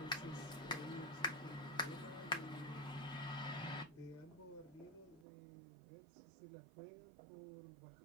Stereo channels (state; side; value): drops out; left; at 5.2 s